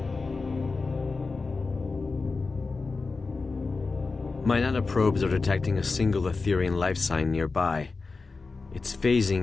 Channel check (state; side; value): quieter; right; 4.1 dB